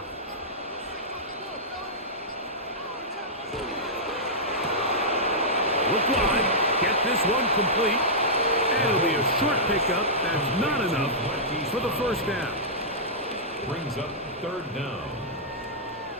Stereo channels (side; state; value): both; normal; correlation -0.12